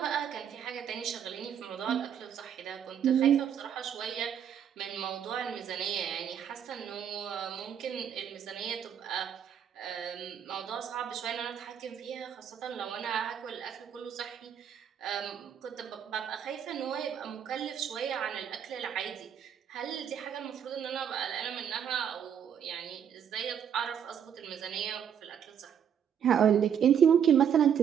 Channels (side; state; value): left; quieter; 8.5 dB